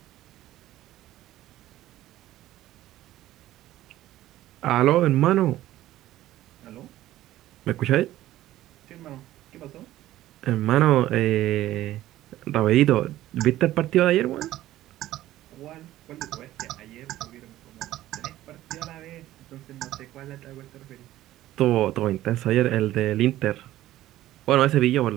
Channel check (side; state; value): left; quieter; 14.6 dB